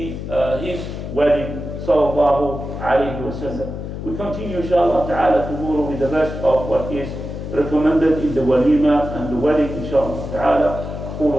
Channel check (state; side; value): noise; left; hum, 7 dB below the sound